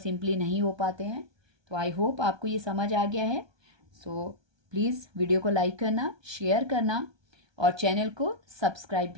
नहीं हो पाते हैं। तो आई होप आपको ये समझ आ गया है। सो प्लीज़ वीडियो को लाइक करना, शेयर करना और चैनल को सब्सक्राइब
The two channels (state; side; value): late; left; 1.2 ms